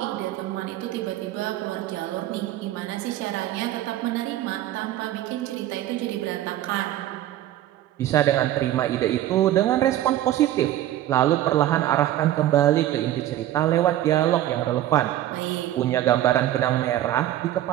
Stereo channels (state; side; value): quieter; left; 13.4 dB